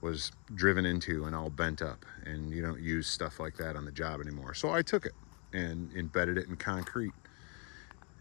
was driven into and all bent up, and you don't use stuff like that on the job anymore. So I took it and embedded it in concrete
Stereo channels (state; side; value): quieter; right; 35.6 dB